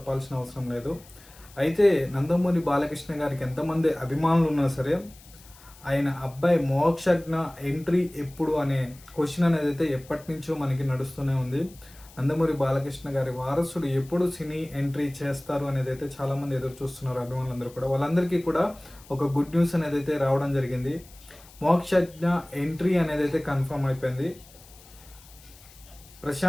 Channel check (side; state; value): left; noise; hiss, 23 dB below the sound